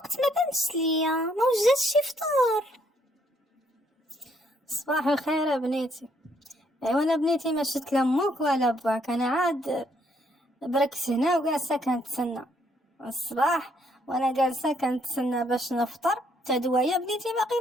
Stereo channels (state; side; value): normal; both; correlation 0.70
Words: ما بانش ليا، ما وجدتش شي فطور. صباح الخير يا بنيتي. ايوا انا بنيتي ما شفت لا ماك ولا باك، انا عاد بركت هنا وجالسه كنتسنى الصباح، وانا جالسه كنتسنى باش نفطر. تا دوايا بنيتي باقي